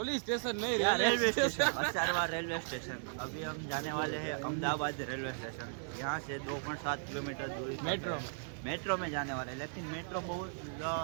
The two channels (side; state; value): left; silent; digital silence